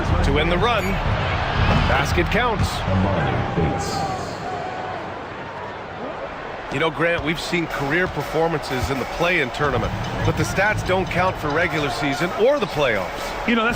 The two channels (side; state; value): both; identical; correlation 1.00